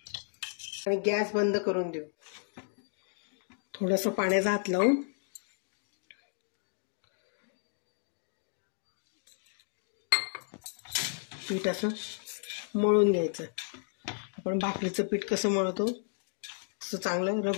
आणि गॅस बंद करून देऊ. थोडंसं पाण्याचा हात लावून पीठ असं मळून घ्यायचं. आपण भाकरीचं पीठ कसं मळतो तसं चांगलं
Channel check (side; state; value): right; silent; digital silence